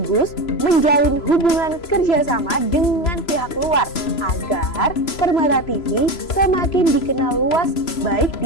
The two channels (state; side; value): late; right; 3.0 ms